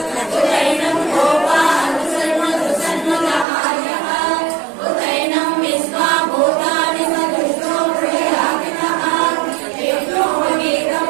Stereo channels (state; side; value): drops out; left; at 3.5 s